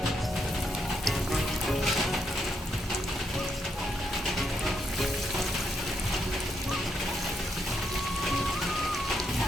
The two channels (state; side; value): normal; both; correlation 0.78